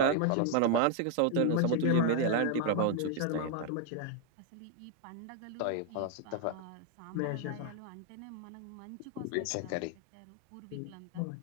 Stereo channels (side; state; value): both; different; correlation 0.00